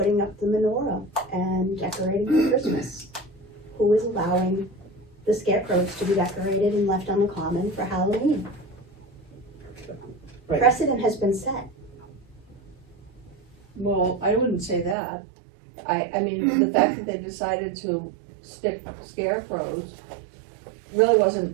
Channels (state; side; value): drops out; left; at 15.0 s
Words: up the menorah and decorating for Christmas? Who is allowing the scarecrows to be decorated and left on the common for Halloween? Right. Precedent has been set. Well, I wouldn't say that. I mean, the fact that they decided to stick scarecrows really